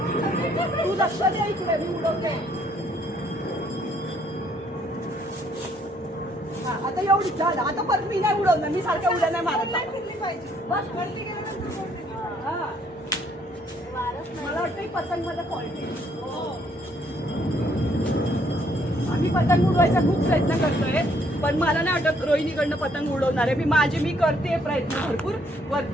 तू लक्ष दे इकडे, मी उडवते. हा, आता एवढीच झालं. आता परत मी नाही उडवणार, मी सारख्या उड्या नाही मारत. बस वरती गेल्यानंतर हा. मला वाटतं ही पतंग मध्ये फॉल्ट आहे. आम्ही पतंग उडवायचा खूप प्रयत्न करतोय, पण मला नाही वाटत रोहिणीकडनं पतंग उडवणार आहे. मी करते प्रयत्न भरपूर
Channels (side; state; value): both; normal; correlation 0.67